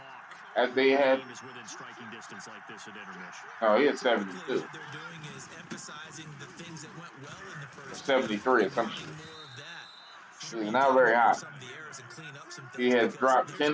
As they had. Oh, he had 72. 73 or something. He's not very high. He has dropped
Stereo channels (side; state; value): both; identical; correlation 1.00